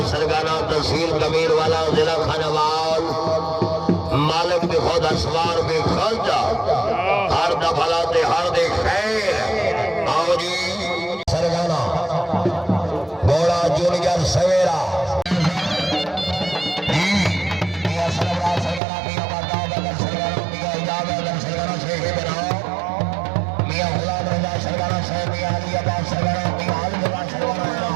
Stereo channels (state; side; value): drops out; left; at 18.8 s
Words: सरगाना तहसील कमीर वाला जिला खानावाल मालिक भी खुद असवार भी खर्चा हर दफलाते हर दे खैर आओ जी सरगाना घोड़ा जूनियर सवेरा